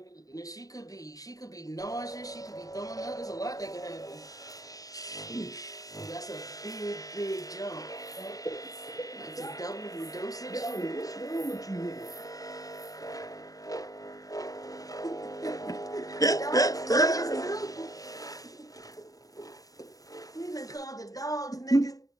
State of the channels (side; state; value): right; late; 0.17 ms